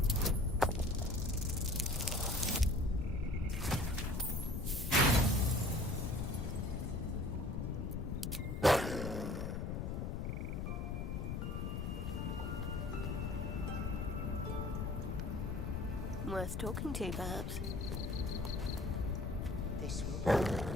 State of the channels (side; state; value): left; noise; rumble, 2 dB below the sound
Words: Worth talking to, perhaps. This will...